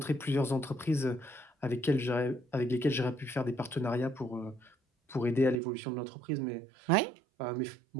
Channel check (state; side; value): drops out; left; at 5.6 s